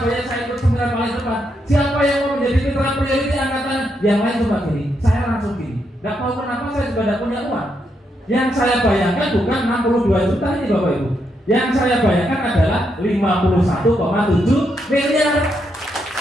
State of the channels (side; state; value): both; normal; correlation 0.80